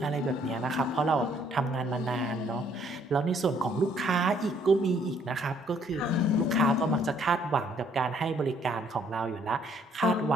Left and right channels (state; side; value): normal; both; correlation 0.65